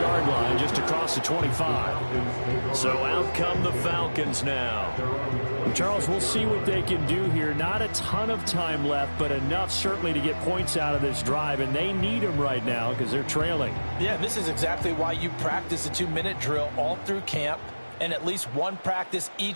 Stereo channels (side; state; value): both; inverted; correlation -1.00